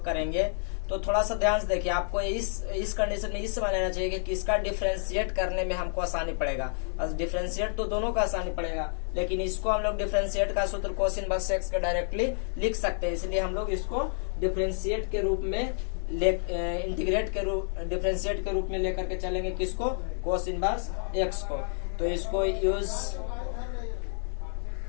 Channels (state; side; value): silent; right; 58 dB below the other